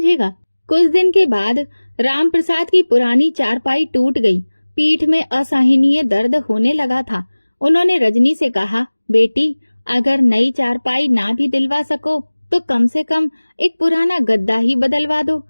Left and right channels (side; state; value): both; inverted; correlation -1.00